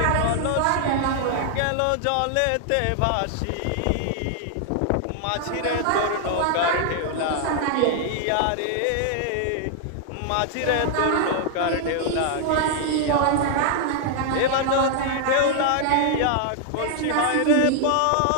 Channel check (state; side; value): different; both; correlation 0.00